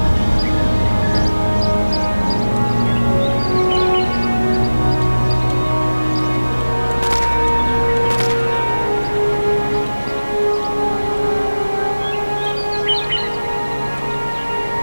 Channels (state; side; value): inverted; both; correlation -1.00